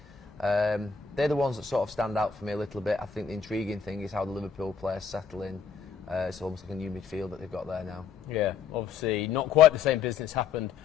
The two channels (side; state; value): right; quieter; 6.1 dB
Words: They're the ones that sort of stand out for me a little bit. I think the intriguing thing is how the Liverpool players settle in. It's almost like a new midfield that they've got there now. Yeah, obviously not quite the same business happened